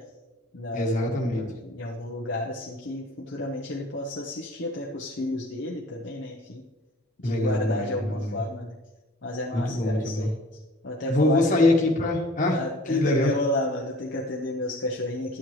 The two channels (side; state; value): both; normal; correlation 0.48